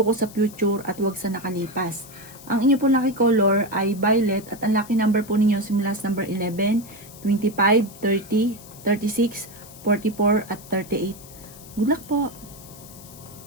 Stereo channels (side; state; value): left; noise; hiss, 19 dB below the sound